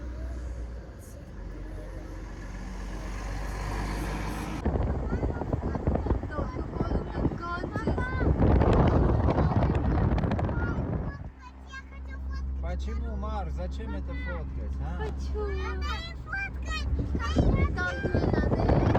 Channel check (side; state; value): both; identical; correlation 1.00